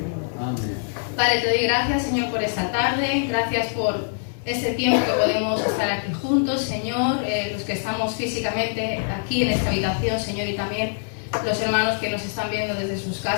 Amén. Padre, te doy gracias, Señor, por esta tarde. Gracias por este tiempo que podemos estar aquí juntos, Señor. Los que estamos físicamente aquí en esta habitación, Señor, y también los hermanos que nos están viendo desde sus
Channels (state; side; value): silent; right; digital silence